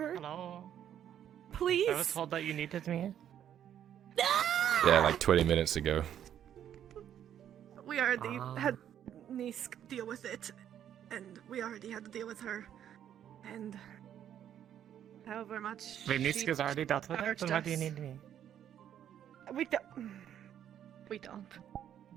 Hello. Please. I was told that you needed me. Yeah, like 20 minutes ago. We already had Nisk deal with it, and we already had to deal with her, and however much. Wait, she Niska's already dealt with it? charged Then why do you us. need me? We don't. We don't.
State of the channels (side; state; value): left; quieter; 10.1 dB